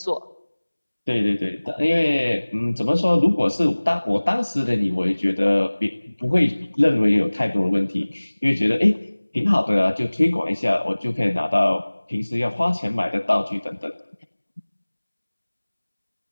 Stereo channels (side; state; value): both; inverted; correlation -1.00